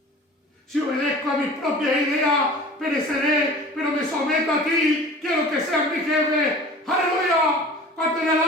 Si obedezco a mis propias ideas, pereceré, pero me someto a ti. Quiero que seas mi jefe. ¡Aleluya! ¿Cuántos le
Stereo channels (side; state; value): both; normal; correlation 0.42